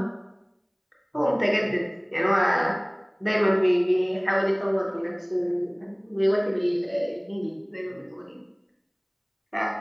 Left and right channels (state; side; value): identical; both; correlation 1.00